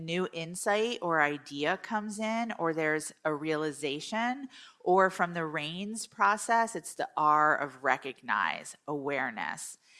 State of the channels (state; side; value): identical; both; correlation 1.00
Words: insight or idea comes in, or there's a realization, or from the RAINS process, it's the R of recognize, awareness.